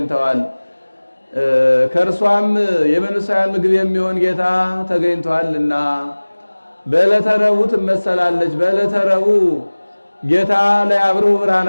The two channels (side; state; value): both; inverted; correlation -1.00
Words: ከእርሷም የመንፈሳውያን ምግብ የሚሆን ጌታ ተገኝቷልና በዕለተ ረቡዕ ትመሰላለች። በዕለተ ረቡዕ ጌታ ለያብርሁ